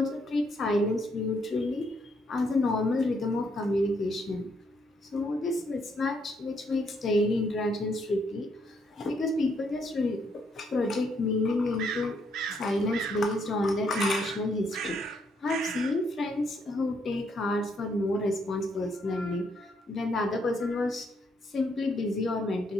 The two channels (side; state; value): both; normal; correlation 0.73